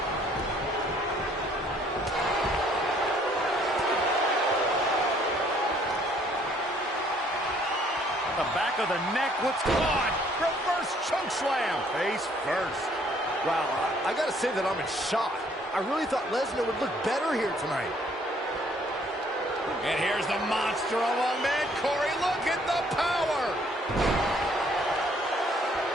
The back of the neck, what's caught? Reverse choke slam. Face first. Wow, I gotta say that I'm in shock. I really thought Lesnar would look better here tonight. And here's the monster among men. Corey, look at the power.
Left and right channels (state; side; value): normal; both; correlation 0.63